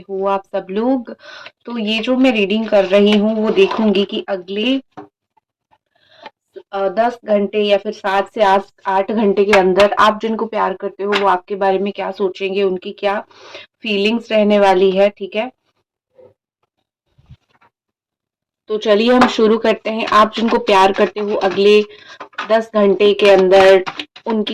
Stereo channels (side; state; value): both; identical; correlation 1.00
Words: हो आप सब लोग? तो ये जो मैं रीडिंग कर रही हूँ वो देखूंगी कि अगले 10 घंटे या फिर 7 से 8 घंटे के अंदर आप जिनको प्यार करते हो वो आपके बारे में क्या सोचेंगे, उनकी क्या फीलिंग्स रहने वाली है। ठीक है, तो चलिए हम शुरू करते हैं। आप जिनको प्यार करते हो अगले 10 घंटे के अंदर